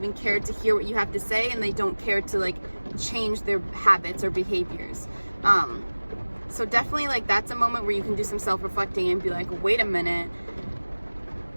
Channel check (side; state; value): both; inverted; correlation -1.00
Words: care to hear what you have to say, and they don't care to like change their habits or behaviors. So definitely, like, that's a moment where you can do some self-reflecting and be like, wait a minute,